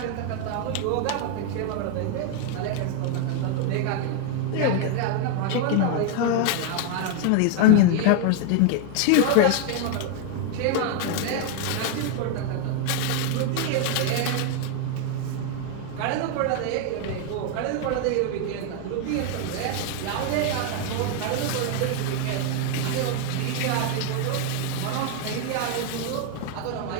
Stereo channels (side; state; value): both; different; correlation 0.00